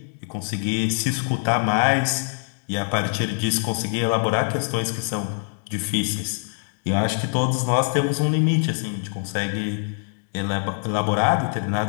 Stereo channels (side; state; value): right; silent; 63 dB below the other